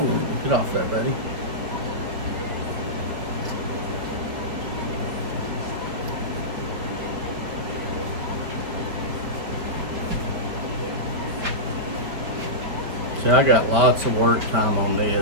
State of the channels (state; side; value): late; left; 5.3 ms